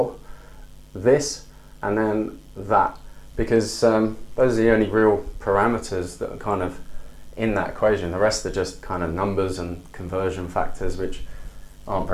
this and then that, because those are the only real parameters that are kind of in that equation. The rest are just kind of numbers and conversion factors, which aren't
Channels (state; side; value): identical; both; correlation 1.00